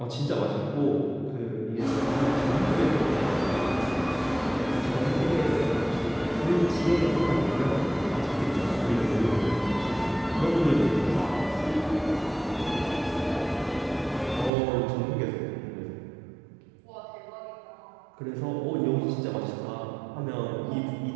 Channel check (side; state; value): left; drops out; at 14.5 s